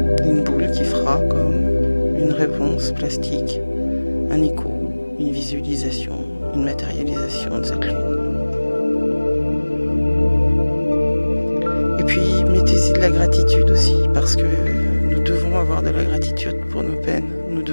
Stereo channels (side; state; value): both; inverted; correlation -1.00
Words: Une boule qui fera comme une réponse plastique, un écho, une visualisation, une matérialisation de cette lune. Et puis, mettez-y de la gratitude aussi, parce que nous devons avoir de la gratitude pour nos peines, nous